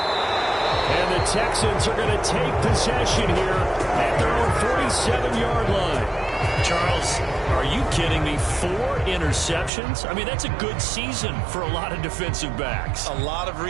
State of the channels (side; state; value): left; drops out; at 9.7 s